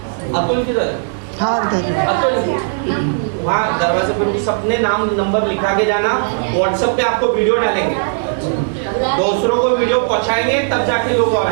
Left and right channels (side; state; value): left; silent; digital silence